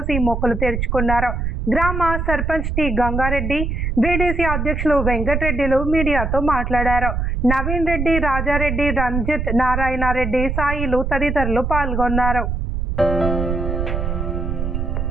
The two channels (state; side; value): noise; right; rumble, 2 dB below the sound